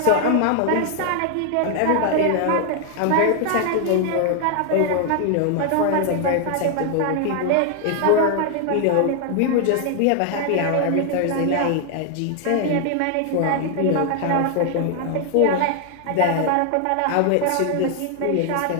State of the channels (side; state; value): both; different; correlation 0.00